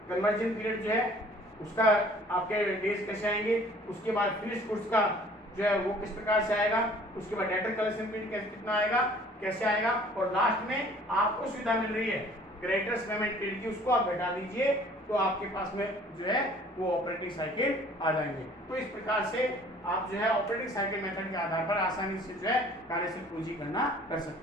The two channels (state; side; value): normal; both; correlation 0.53